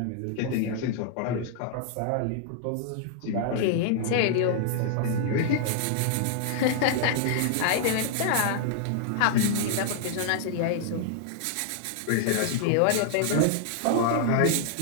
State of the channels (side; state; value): both; different; correlation -0.01